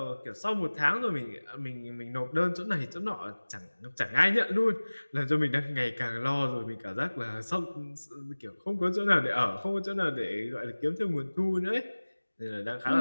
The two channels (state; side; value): inverted; both; correlation -1.00